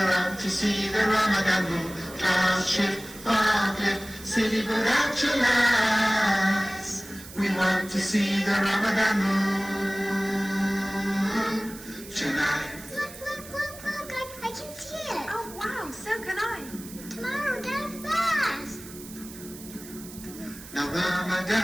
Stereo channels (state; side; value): noise; right; hiss, 16 dB below the sound